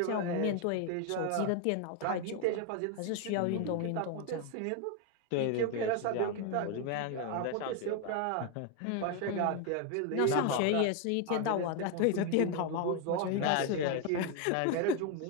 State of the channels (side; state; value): both; different; correlation 0.01